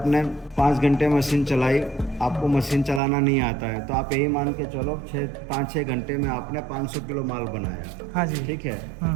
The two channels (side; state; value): left; drops out; at 3.0 s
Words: 5 घंटे मशीन चलाई, आपको मशीन चलाना नहीं आता है, तो आप यही मान के चलो 5-6 घंटे में आपने 500 किलो माल बनाया। हाँ जी। ठीक है,